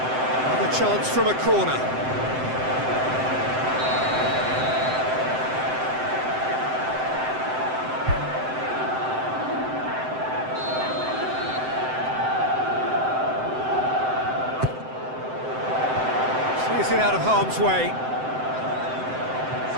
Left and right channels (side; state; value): left; late; 7.8 ms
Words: Another chance from a corner. Clears it out of harm's way.